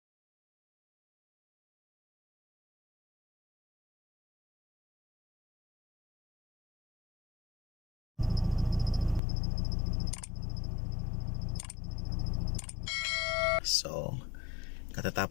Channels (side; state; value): right; drops out; at 9.2 s